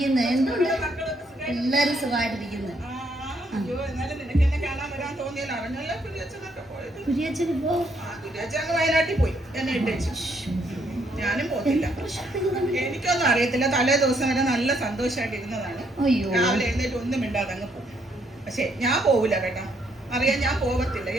എന്തുണ്ട്, എല്ലാരും സുഖമായിട്ടിരിക്കുന്നു. വയനാട്ടിൽ പോയി എന്നെ ഇട്ടേച്ചു. ഞാനും പോയില്ല, എനിക്കൊന്നും അറിയത്തില്ല. തലേ ദിവസം വരെ നല്ല സന്തോഷമായിട്ട് ഇരുന്നതാണ്. രാവിലെ എഴുന്നേറ്റ് ഒന്നും മിണ്ടാതെ അങ്ങ് പോകും. പക്ഷെ ഞാൻ പോവില്ല കേട്ടോ, അറിയാൻ ഞാൻ പോകത്തില്ല.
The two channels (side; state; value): both; normal; correlation 0.71